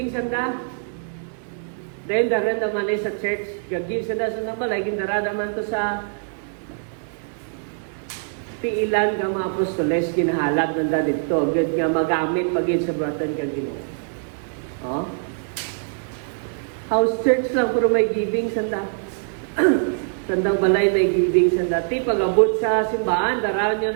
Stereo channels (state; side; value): silent; left; digital silence